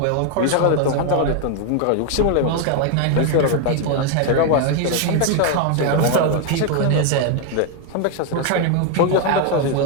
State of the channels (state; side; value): different; both; correlation 0.01